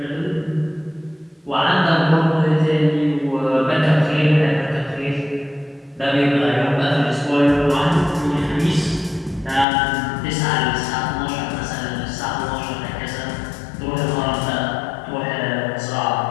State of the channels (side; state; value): right; drops out; at 9.7 s